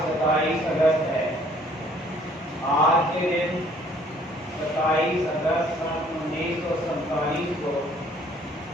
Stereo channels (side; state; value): both; normal; correlation 0.59